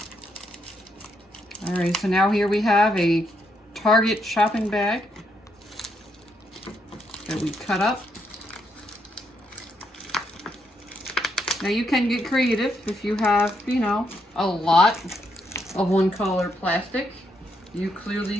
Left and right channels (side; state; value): both; normal; correlation 0.77